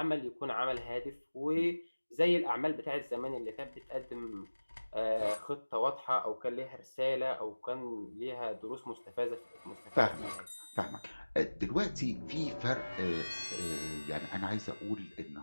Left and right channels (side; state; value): both; inverted; correlation -1.00